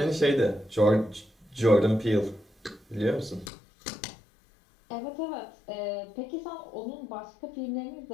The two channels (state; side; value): drops out; right; at 3.5 s